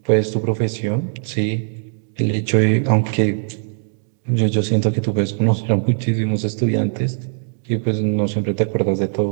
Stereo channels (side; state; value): left; silent; 66 dB below the other